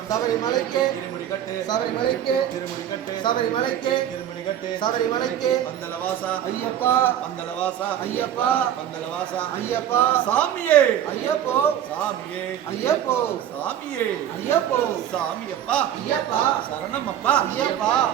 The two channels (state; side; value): quieter; left; 10.6 dB